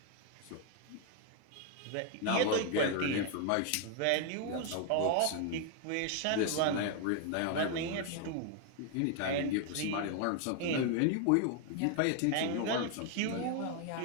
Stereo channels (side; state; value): both; different; correlation 0.00